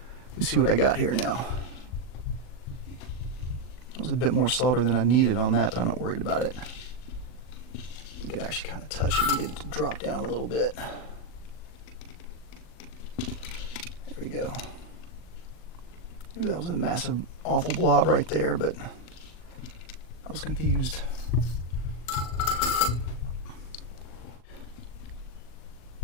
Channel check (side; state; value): right; late; 39 ms